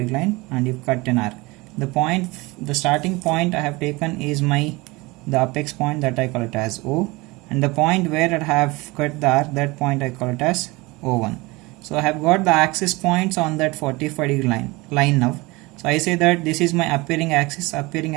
line and you cut an arc. The starting point I have taken is the apex point, that I call it as O, and the point where I have cut the arc, that point I call it as O1. So I have got the axis points on that 45 degree line now. So I say that this is my appearing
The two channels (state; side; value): quieter; left; 23.4 dB